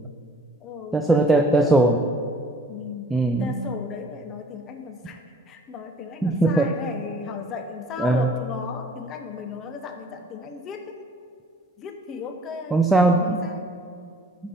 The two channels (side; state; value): both; normal; correlation 0.55